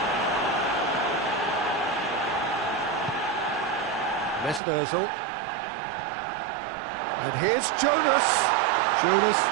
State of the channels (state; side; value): drops out; left; at 4.6 s